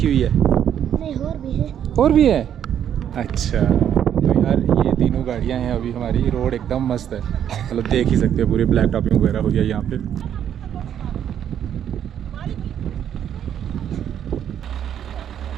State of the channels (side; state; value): left; quieter; 9.6 dB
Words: हुई है? नहीं, और भी है। अच्छा, तो यार ये तीनों गाड़ियाँ हैं अभी हमारी। रोड एकदम मस्त है, मतलब देख ही सकते हो पूरे ब्लैक टॉपिंग वगैरह हो गया यहाँ पे।